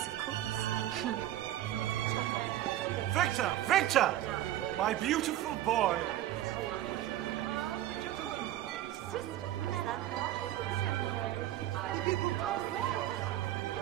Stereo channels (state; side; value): quieter; left; 13.6 dB